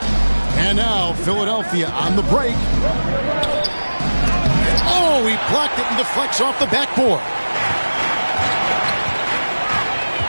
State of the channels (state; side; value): inverted; both; correlation -1.00